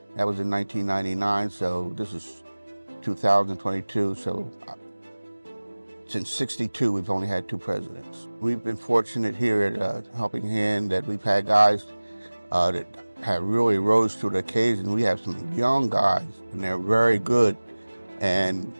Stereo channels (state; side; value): inverted; both; correlation -1.00